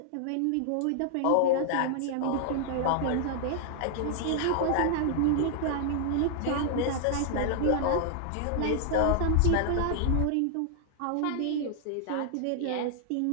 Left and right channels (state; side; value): different; both; correlation 0.00